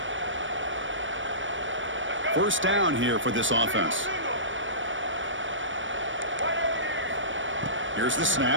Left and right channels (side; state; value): left; late; 0.56 ms